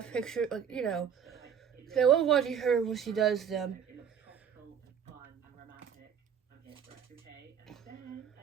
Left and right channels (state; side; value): quieter; left; 7.9 dB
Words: pictures, like, you know. So I love watching her when she does them.